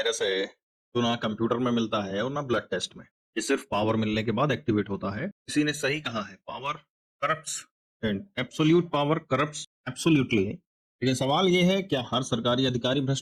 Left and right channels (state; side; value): identical; both; correlation 1.00